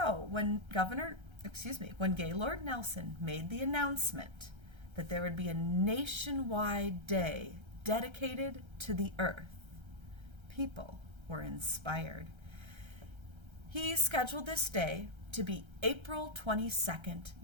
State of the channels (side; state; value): left; late; 1.3 ms